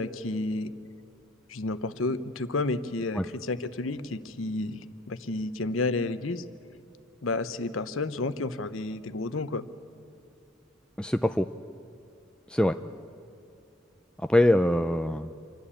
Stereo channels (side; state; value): both; normal; correlation 0.66